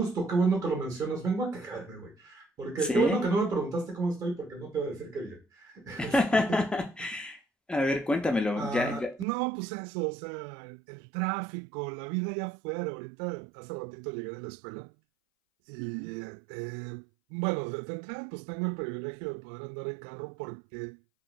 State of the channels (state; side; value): drops out; left; at 9.2 s